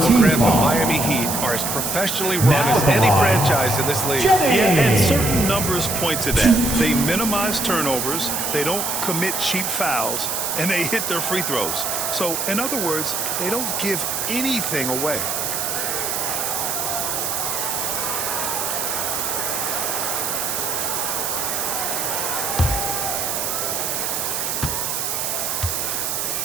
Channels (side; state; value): right; noise; hiss, 1 dB below the sound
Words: team The foul. Miami Heat are as professionally run as any franchise in this league. Yeah, and certain numbers point to that. They minimize turnovers, they don't commit cheap fouls, and they hit their free throws. So, in other words, they don't give anything away.